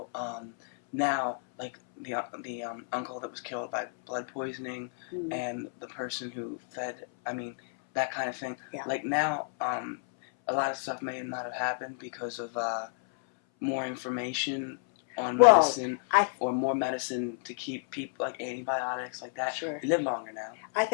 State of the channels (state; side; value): silent; right; 57 dB below the other